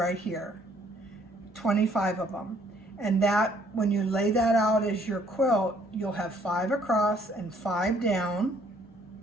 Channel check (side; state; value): both; normal; correlation 0.64